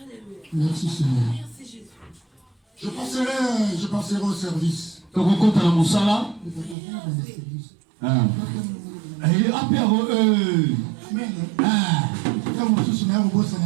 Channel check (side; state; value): left; drops out; at 6.8 s